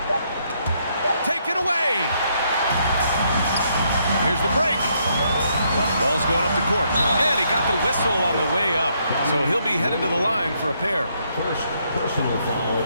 Taken away. Here's the break. Ball's going up the court. And he got the whistle on the way up. So he'll be headed to the line for a pair. First personal foul.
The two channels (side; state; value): both; inverted; correlation -0.73